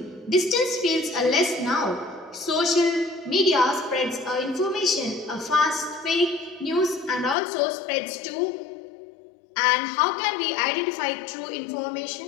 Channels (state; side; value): drops out; right; at 7.4 s